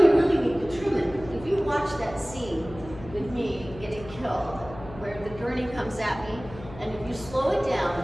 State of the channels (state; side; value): noise; left; hum, 15 dB below the sound